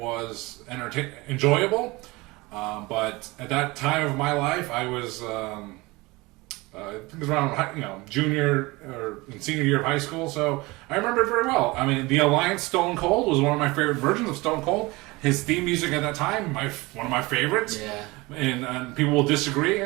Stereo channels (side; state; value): left; quieter; 22.8 dB